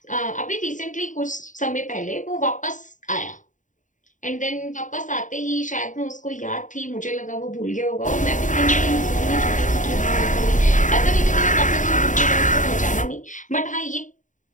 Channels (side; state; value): right; late; 0.37 ms